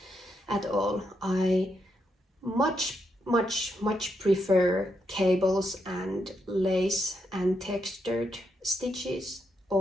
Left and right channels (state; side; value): normal; both; correlation 0.80